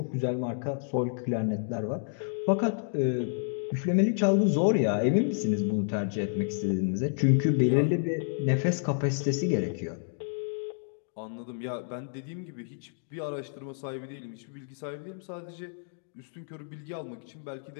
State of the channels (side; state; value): right; silent; digital silence